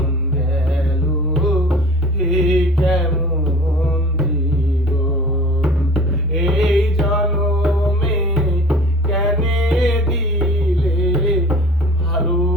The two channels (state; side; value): normal; both; correlation 0.44